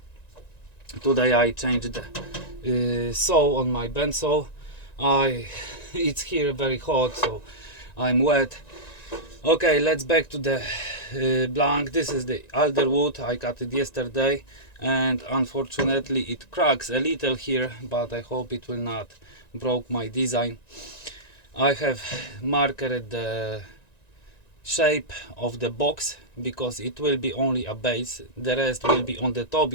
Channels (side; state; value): right; late; 1.9 ms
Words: Today I changed the saw on my Bandsaw. It's here very hot, so I'm wet. Okay, let's back to the blank. This is the alder wood. I cut it yesterday and unfortunately it cracks a little here, but I hope it will not broke my design. I have marked the shape of the box because it will be only a base, the rest will be on the top.